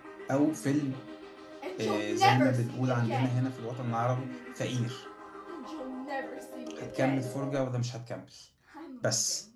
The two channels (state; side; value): identical; both; correlation 1.00